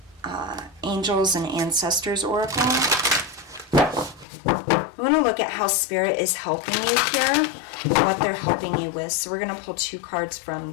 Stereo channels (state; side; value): drops out; right; at 4.2 s